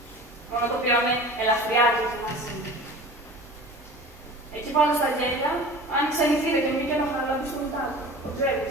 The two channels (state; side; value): normal; both; correlation 0.39